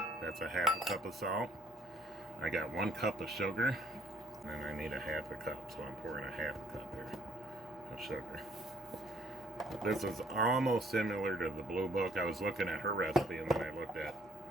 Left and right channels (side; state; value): both; normal; correlation 0.61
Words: That's a half a cup of salt. I got 1 cup of sugar, and I need a half a cup, so I'm pouring a half a cup here of sugar. This is almost similar to the Blue Book. I was looking at her recipe, and then I looked at